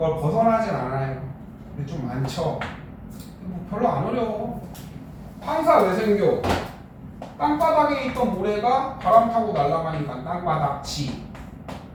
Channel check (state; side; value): identical; both; correlation 1.00